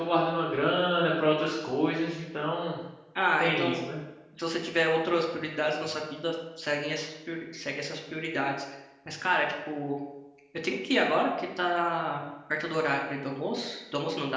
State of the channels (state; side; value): identical; both; correlation 1.00